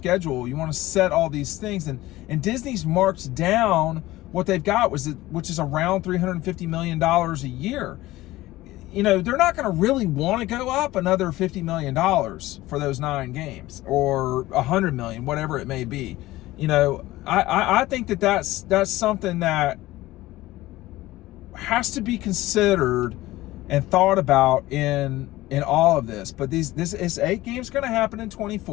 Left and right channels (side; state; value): right; quieter; 17.4 dB